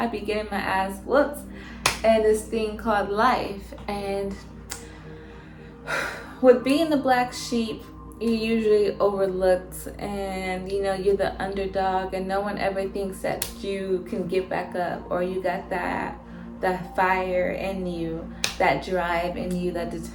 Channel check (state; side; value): identical; both; correlation 1.00